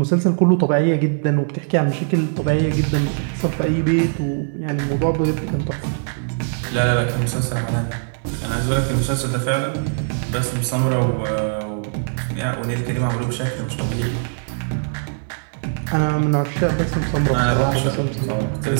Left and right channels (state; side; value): silent; left; 65 dB below the other